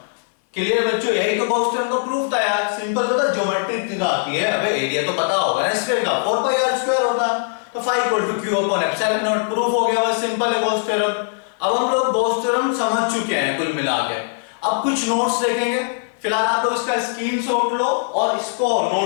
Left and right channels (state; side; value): silent; right; digital silence